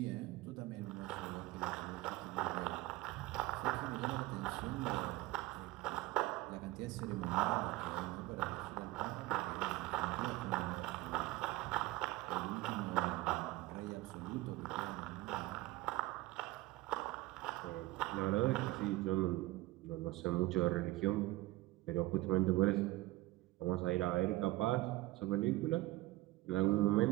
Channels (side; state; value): left; quieter; 18.9 dB